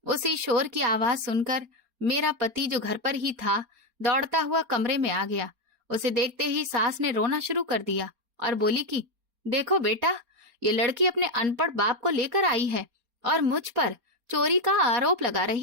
उसी शोर की आवाज सुनकर मेरा पति, जो घर पर ही था, दौड़ता हुआ कमरे में आ गया। उसे देखते ही सास ने रोना शुरू कर दिया और बोली कि देखो बेटा, ये लड़की अपने अनपढ़ बाप को लेकर आई है और मुझ पर चोरी का आरोप लगा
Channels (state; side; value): late; left; 4.3 ms